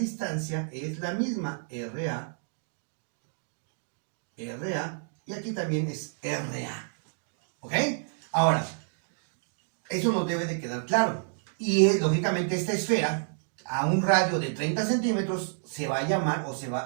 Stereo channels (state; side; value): silent; left; digital silence